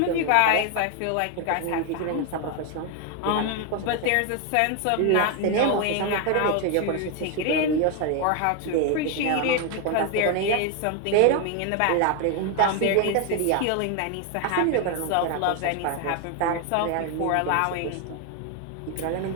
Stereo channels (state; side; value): different; both; correlation 0.01